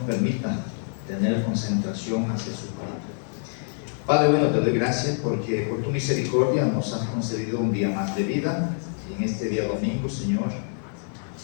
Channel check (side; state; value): right; silent; 61 dB below the other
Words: tener concentración hacia su palabra. Padre bueno, te doy gracias porque por tu misericordia nos has concedido un día más de vida. Y en este día domingo, Señor,